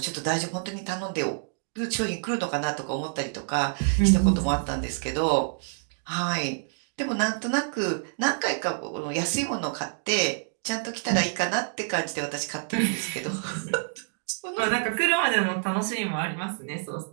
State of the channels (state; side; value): silent; left; digital silence